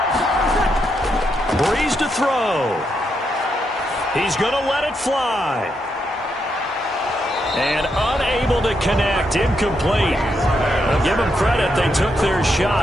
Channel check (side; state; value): both; normal; correlation 0.81